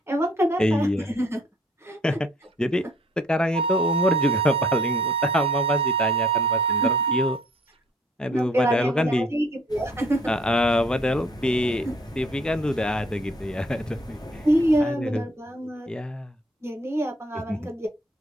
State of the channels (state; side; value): normal; both; correlation 0.59